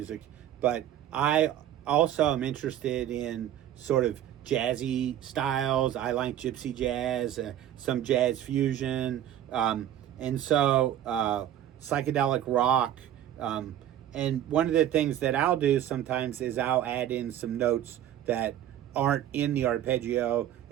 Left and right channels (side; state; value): left; quieter; 11.4 dB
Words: but I also am interested in sort of jazzy styles. I like gypsy jazz, some jazz fusion, and so psychedelic rock. And one of the things that I'll do sometimes is I'll add in some notes that aren't in the arpeggio,